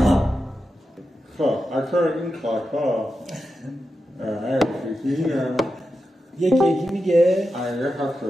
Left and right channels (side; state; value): both; normal; correlation 0.90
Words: خب اکثر این کارها یکی میگه